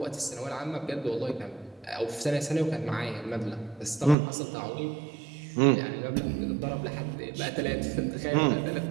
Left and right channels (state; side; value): drops out; left; at 4.2 s